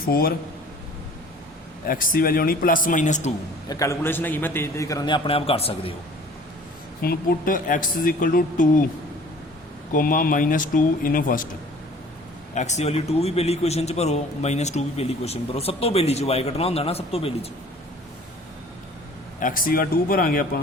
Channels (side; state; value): both; normal; correlation 0.49